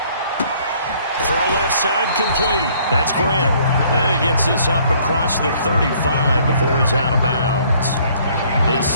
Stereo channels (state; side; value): inverted; both; correlation -0.60